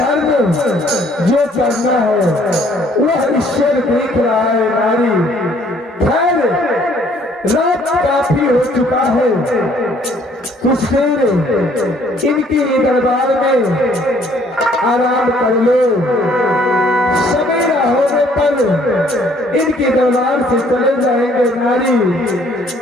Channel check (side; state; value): both; normal; correlation 0.61